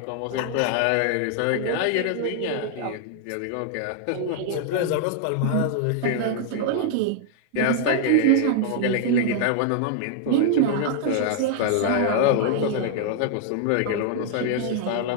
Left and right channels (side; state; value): both; different; correlation 0.00